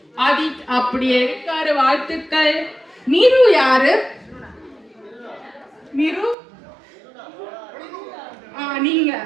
ஆதித் அப்படியே இருக்காரு, வாழ்த்துக்கள். மீரு யாரு? மீரு நீங்க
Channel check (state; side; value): drops out; left; at 6.4 s